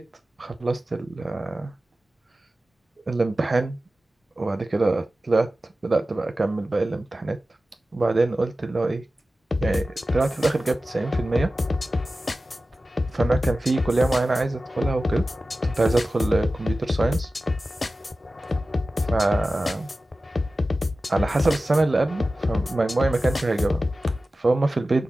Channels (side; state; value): both; normal; correlation 0.95